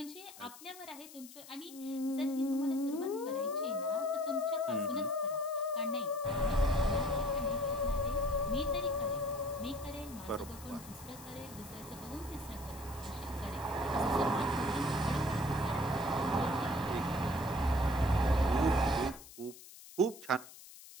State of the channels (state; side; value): noise; left; hiss, 17 dB below the sound